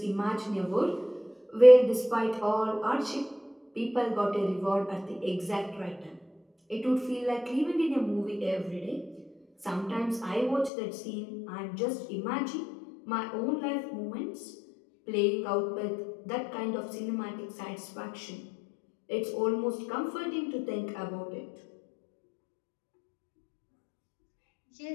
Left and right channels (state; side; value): drops out; right; at 10.7 s